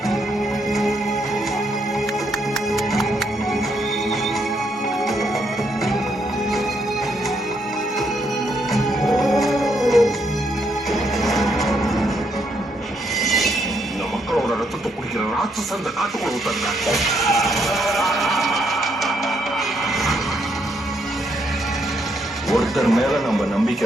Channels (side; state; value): both; normal; correlation 0.75